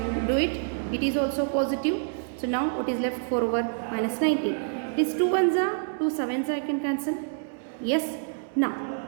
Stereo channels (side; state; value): left; silent; digital silence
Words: do it. It is also positive. So now what is left? 4 over minus 19. It is 2 ones are, 2 sevens I can cancel. Yes. Now